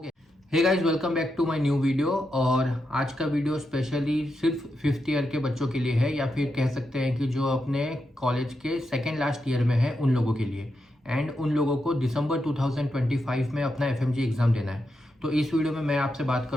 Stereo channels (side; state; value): both; normal; correlation 0.85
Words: Hey guys, welcome back to my new video. और आज का वीडियो स्पेशली सिर्फ फिफ्थ ईयर के बच्चों के लिए है, या फिर कह सकते हैं कि जो अपने कॉलेज के सेकेंड लास्ट ईयर में है उन लोगों के लिए, एंड उन लोगों को दिसंबर 2025 में अपना FMG एग्ज़ाम देना है। तो इस वीडियो में मैं आपसे बात